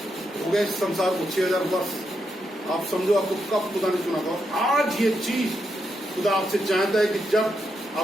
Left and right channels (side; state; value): both; normal; correlation 0.82